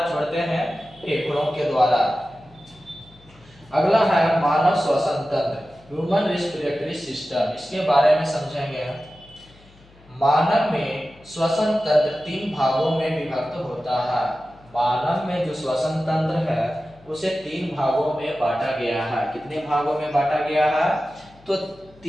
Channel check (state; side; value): noise; left; hum, 27 dB below the sound